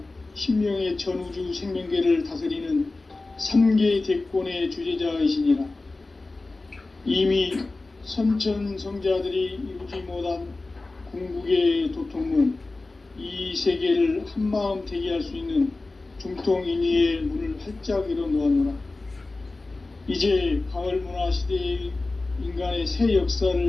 신명의 전우주 생명계를 다스리는 3계 대권의 주재자이시니라. 이미 선천성자들이 이루지 못한 궁극의 도통문, 이 세계를 한마음 되게 할 수 있는 중통인의의 문을 활짝 열어놓았노라. 이제 가을 문화 시대의 인간의 새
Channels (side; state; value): right; quieter; 3.3 dB